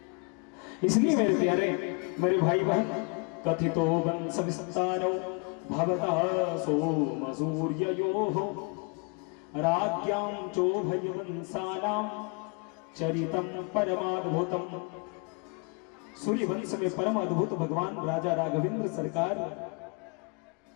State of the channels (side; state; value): right; quieter; 34.1 dB